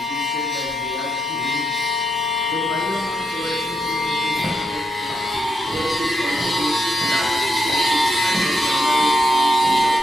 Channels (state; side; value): normal; both; correlation 0.82